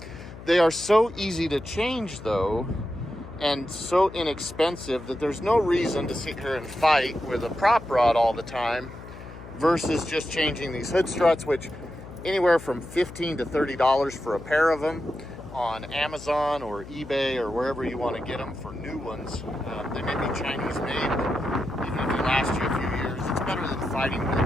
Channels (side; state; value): left; noise; hum, 15 dB below the sound